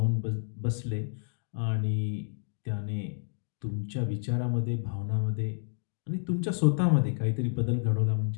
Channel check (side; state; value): right; silent; digital silence